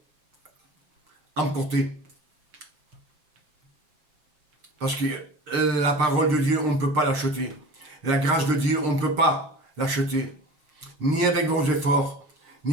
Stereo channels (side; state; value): left; late; 6.6 ms